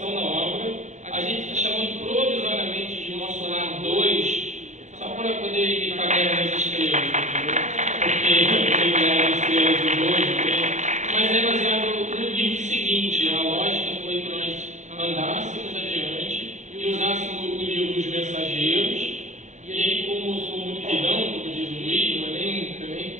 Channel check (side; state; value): left; late; 0.34 ms